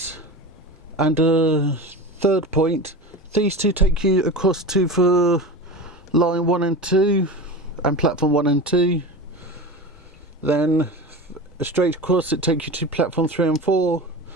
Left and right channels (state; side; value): normal; both; correlation 0.29